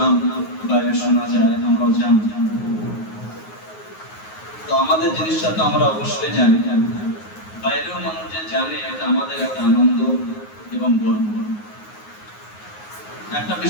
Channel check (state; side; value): late; right; 9.5 ms